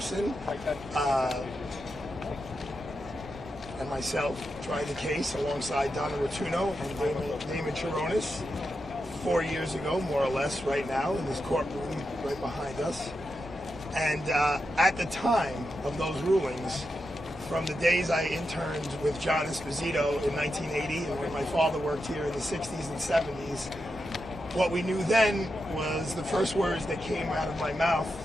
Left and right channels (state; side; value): noise; left; hum, 22 dB below the sound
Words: and myself tried the case alongside Donna Rotuno and Damon Chironis 4 years ago, more or less, right now in this courtroom right behind us. And at the time of those rulings, from the days I interned with John Esposito in 1980 and when my father worked here in the 60s and 70s, what we knew then was the first words that came out of my mouth